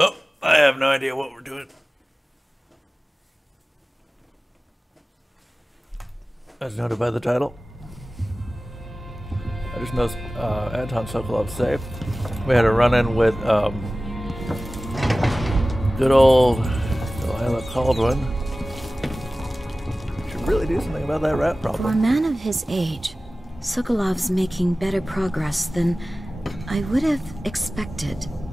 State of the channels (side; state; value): both; normal; correlation 0.97